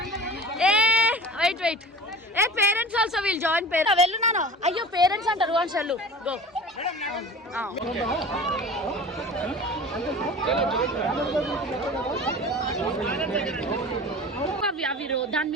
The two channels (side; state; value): both; normal; correlation 0.38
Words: Wait a parents also will join. వెళ్ళు నాను. అయ్యో పేరెంట్స్ అంటారు. వన్స్ వెళ్ళు గో. అవి దాని